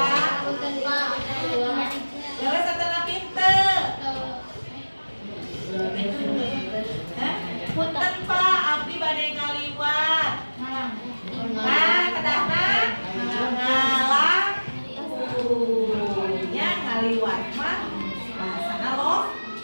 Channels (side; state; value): both; inverted; correlation -1.00